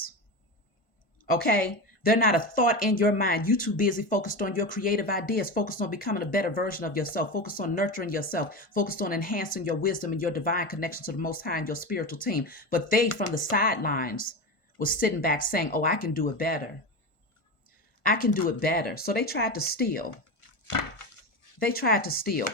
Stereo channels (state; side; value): late; right; 1.5 ms